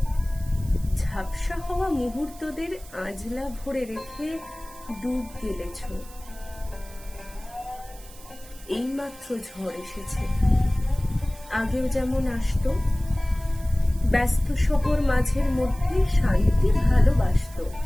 ঝাপসা হওয়া মুহূর্তদের আঁজলা ভরে রেখে ডুব গেলেছ। এইমাত্র ঝড় এসেছে, আগেও যেমন আসতো, ব্যস্ত শহর মাঝের মধ্যে শান্তি ভালোবাসতো।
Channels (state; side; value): noise; right; hiss, 20 dB below the sound